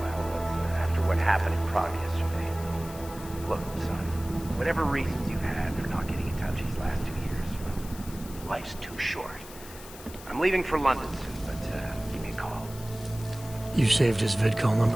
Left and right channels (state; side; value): noise; left; hiss, 16 dB below the sound